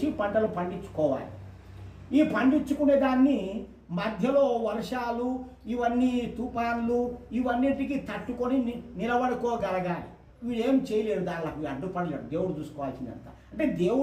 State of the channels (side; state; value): both; identical; correlation 1.00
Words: పంటలు పండించుకోవాలి. ఈ పండించుకునే దాన్ని మధ్యలో వర్షాలు, ఇవన్నీ తుఫాన్లు, ఇవన్నిటికీ తట్టుకొని నిలబడుకోగలగాలి. వీడేం చేయలేడు, దానికి అడ్డుపడలేడు. దేవుడు చూసుకోవాల్సిందంత. అంటే